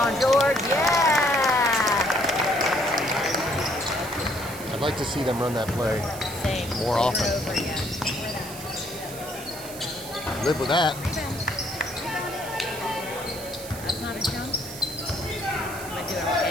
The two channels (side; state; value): right; noise; hiss, 13 dB below the sound